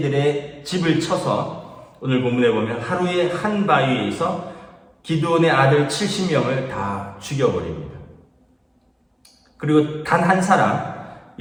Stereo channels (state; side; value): identical; both; correlation 1.00